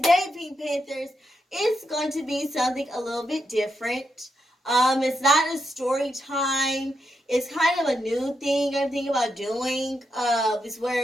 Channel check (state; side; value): normal; both; correlation 0.83